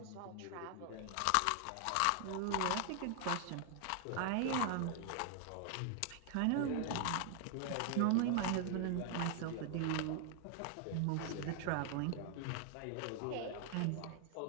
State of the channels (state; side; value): different; both; correlation 0.00